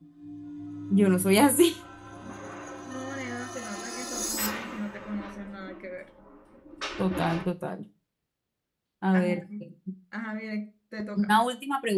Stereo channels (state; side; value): identical; both; correlation 1.00